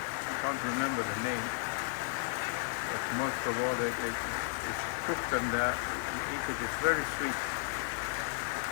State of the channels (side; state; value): right; silent; digital silence